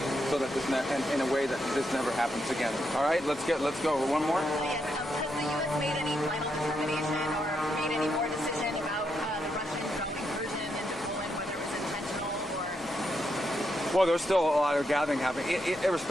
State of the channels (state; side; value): normal; both; correlation 0.81